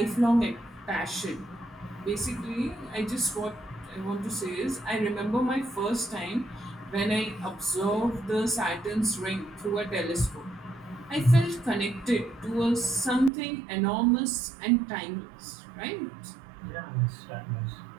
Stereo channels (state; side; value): drops out; left; at 13.3 s